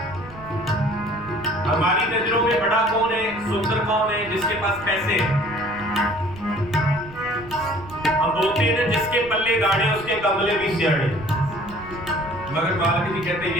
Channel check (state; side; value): noise; right; rumble, 18 dB below the sound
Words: हमारी नजरों में बड़ा कौन है सुंदर कौन है जिसके पास पैसे हैं हम बोलते हैं ना जिसके पल्ले गाड़े उसके कमले भी सियाड़े मगर मालिक जी कहते